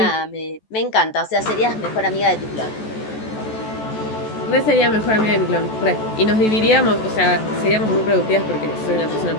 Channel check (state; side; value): late; right; 14 ms